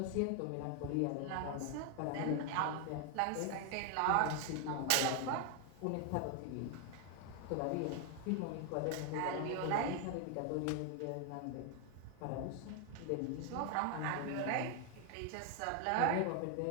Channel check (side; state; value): both; different; correlation 0.00